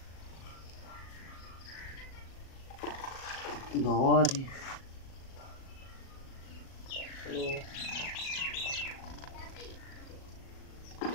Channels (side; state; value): right; late; 37 ms